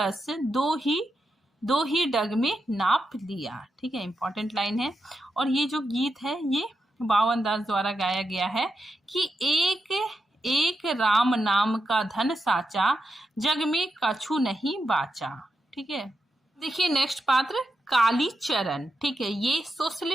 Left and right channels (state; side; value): normal; both; correlation 0.86